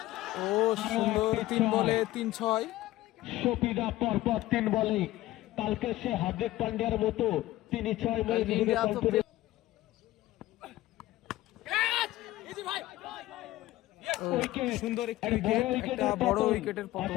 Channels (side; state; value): right; quieter; 16.4 dB